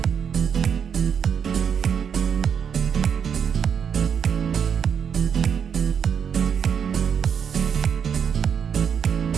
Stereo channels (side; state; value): left; quieter; 7.5 dB